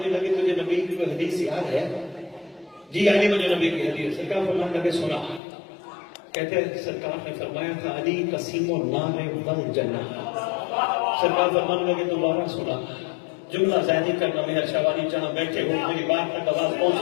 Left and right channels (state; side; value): drops out; right; at 5.4 s